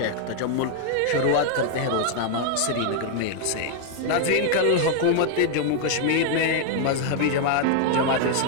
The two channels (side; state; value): both; different; correlation 0.00